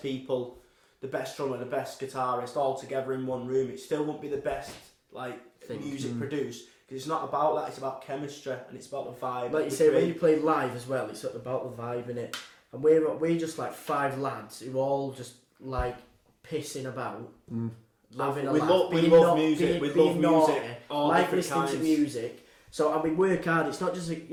people, the best drummer, the best guitarist all together in one room. It still won't be the best music produced, because it's not about that. It's about chemistry and it's about the vibe. Like you say, when you play live as well, it's about the vibe in it. And we're just like 5 lads who all just like pissing about, having a laugh. We love music. We love music. Like listening to music. So and we work hard. It's not just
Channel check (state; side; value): identical; both; correlation 1.00